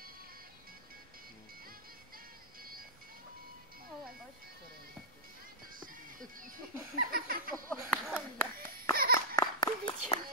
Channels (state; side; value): noise; right; rumble, 27 dB below the sound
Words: Ovo je baš.